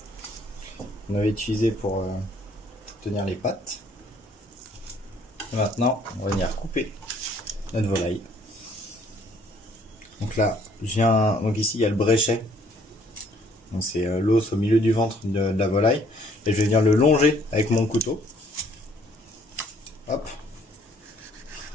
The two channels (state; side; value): normal; both; correlation 0.62